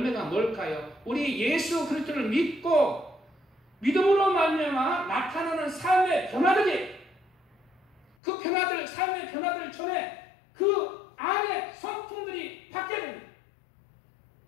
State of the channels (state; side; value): drops out; right; at 8.1 s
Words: 뭘까요? 우리 예수 그리스도를 믿고 믿음으로 말미암아 나타나는 삶의 변화들이, 그 변화들, 삶의 변화들 전에 그 안에 성품들이 바뀌어야 됩니다.